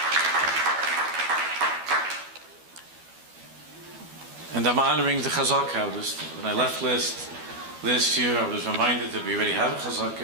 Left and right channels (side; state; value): left; late; 12 ms